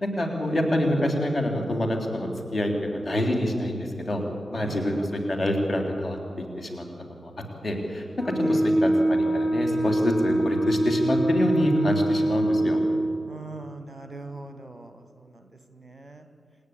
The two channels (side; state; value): both; normal; correlation 0.92